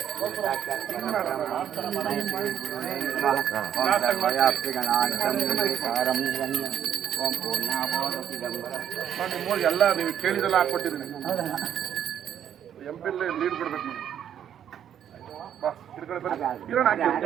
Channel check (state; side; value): quieter; left; 9.6 dB